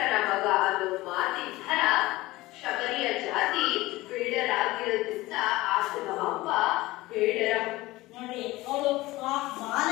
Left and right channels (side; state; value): right; quieter; 19.0 dB